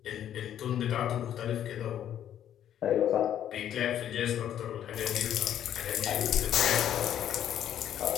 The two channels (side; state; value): right; quieter; 10.5 dB